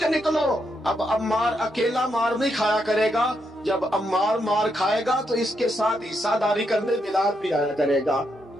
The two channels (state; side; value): normal; both; correlation 0.80